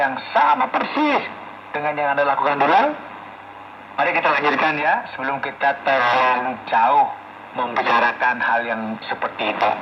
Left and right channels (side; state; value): both; identical; correlation 1.00